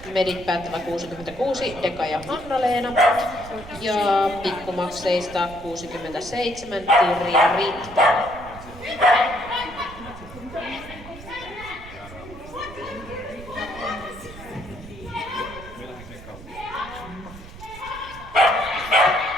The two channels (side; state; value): right; noise; rumble, 16 dB below the sound